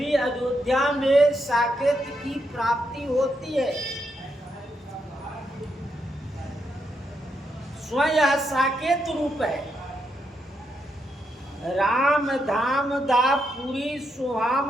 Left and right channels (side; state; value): both; normal; correlation 0.80